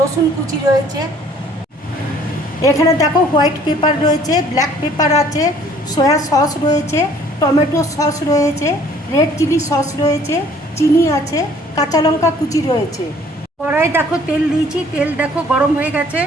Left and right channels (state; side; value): normal; both; correlation 0.56